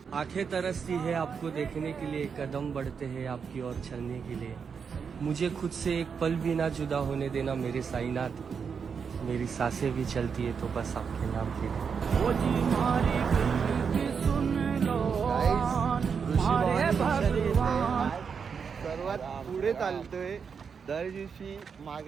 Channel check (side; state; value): left; quieter; 6.2 dB